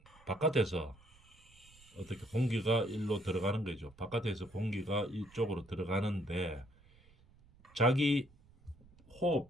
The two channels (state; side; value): noise; right; rumble, 26 dB below the sound